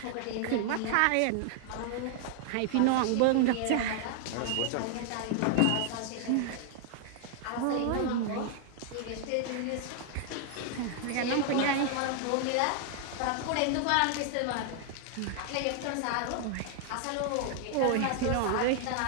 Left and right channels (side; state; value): both; different; correlation 0.00